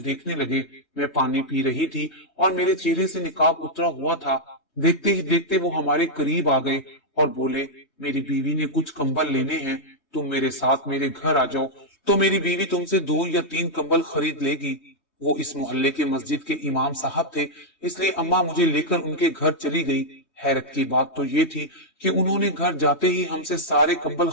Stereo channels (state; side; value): late; right; 3.2 ms